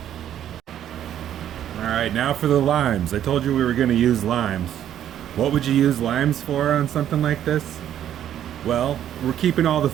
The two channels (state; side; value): quieter; left; 10.7 dB